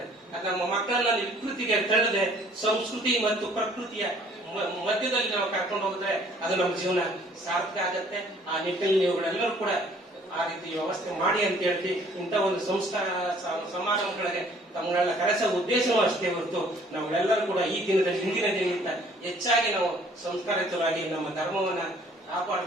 ಅದು ನಮ್ಮ ಮಕ್ಕಳನ್ನ ವಿಕೃತಿಗೆ ತಳ್ಳದೆ ಸಂಸ್ಕೃತಿ ಮತ್ತು ಪ್ರಕೃತಿಯ ಮಧ್ಯದಲ್ಲಿ ನಾವು ಕರ್ಕೊಂಡು ಹೋಗಿದ್ರೆ ಅದು ನಮ್ಮ ಜೀವನ ಸಾರ್ಥಕ ಆಗತ್ತೆ. ಆ ನಿಟ್ಟಿನಲ್ಲಿ ನೀವುಗಳೆಲ್ಲರೂ ಕೂಡ ಆ ರೀತಿ ವ್ಯವಸ್ಥೆ ಮಾಡಿ ಅಂತ ಹೇಳ್ತಿ ಇಂಥ ಒಂದು ಸಂಸ್ಕಾರ ಸಮಾರಂಭಗಳಿಗೆ ತಮ್ಮಗಳನ್ನ ಕರೆಸೋ ಉದ್ದೇಶವೂ ಅಷ್ಟೇ ಹೊರತು ನಾವೆಲ್ಲರೂ ಕೂಡ ಈ ದಿನದಲ್ಲಿ ಹಿಂದಿನ ದಿನಕ್ಕಿಂತ ಹೆಚ್ಚಾಗಿ ನಾವು ಸಂಸ್ಕಾರಿತರಾಗಿ ನಮ್ಮ ಧರ್ಮವನ್ನ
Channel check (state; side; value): normal; both; correlation 0.58